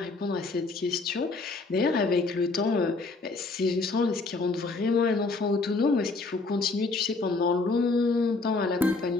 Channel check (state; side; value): quieter; right; 3.7 dB